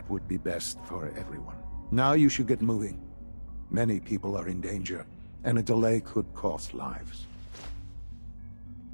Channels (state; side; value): inverted; both; correlation -1.00